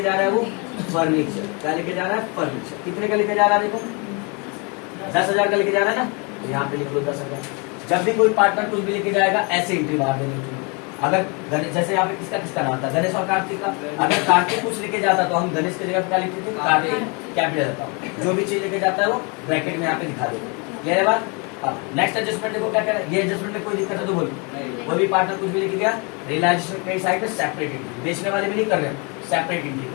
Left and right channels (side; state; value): right; quieter; 31.9 dB